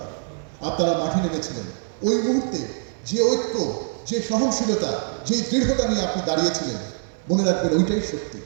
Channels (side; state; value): left; silent; 63 dB below the other